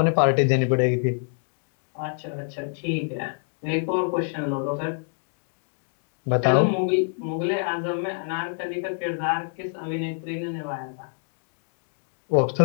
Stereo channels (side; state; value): right; silent; 61 dB below the other